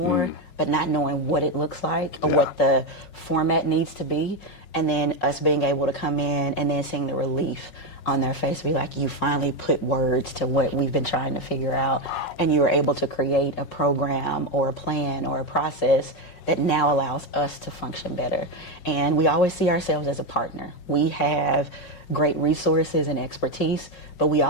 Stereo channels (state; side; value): late; right; 5.5 ms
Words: but not knowing what it looks like or what the format needs to be. And then us being able to come in and then seeing the relief on their face, be like, you finally put words to what we've been trying to figure out, and you were able to create a program or a plan or a process that now allows us to function better. And we always see ourselves as a partner. We have great resources and expertise, but we